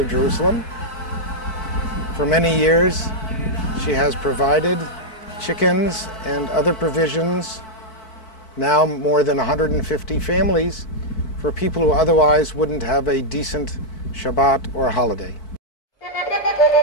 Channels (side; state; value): right; late; 4.6 ms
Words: Jerusalem. For many years, she has provided chickens and other provisions, now more than 150 families, for people who otherwise wouldn't have a decent Shabbat or holiday.